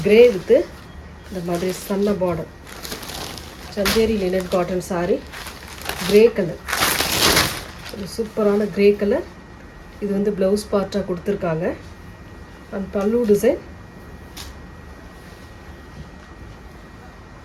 கிரே வித்து இந்த மாதிரி சன்ன border. Chanderi linen cotton saree. Grey colour. ஒரு சூப்பரான கிரே கலர். இது வந்து ப்ளவுஸ் பார்ட்டாக கொடுத்துருக்காங்க. அண்ட் பல்லு டிசைன்.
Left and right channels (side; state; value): both; identical; correlation 1.00